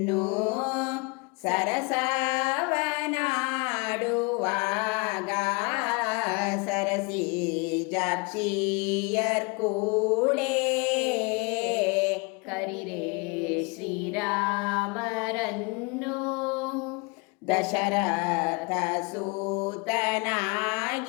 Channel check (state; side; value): quieter; right; 29.2 dB